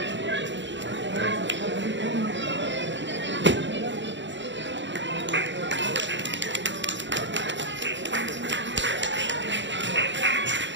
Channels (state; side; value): late; left; 0.53 ms